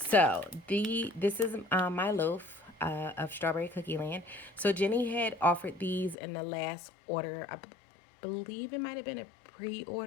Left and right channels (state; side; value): drops out; right; at 6.2 s